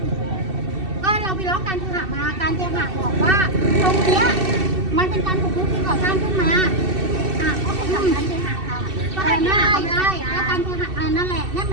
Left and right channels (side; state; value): left; late; 2.6 ms